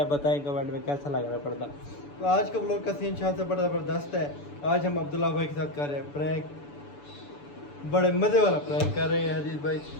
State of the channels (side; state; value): right; late; 6.9 ms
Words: बताएं कमेंट में कैसा लग रहा है पर्दा। तो आज का व्लॉग का सीन शाह से बड़ा ज़बरदस्त है। आज हम अब्दुल्ला भाई के साथ कर रहे हैं प्रैंक, बड़े मज़े वाला प्रैंक कर रहे हैं हरीत भाई।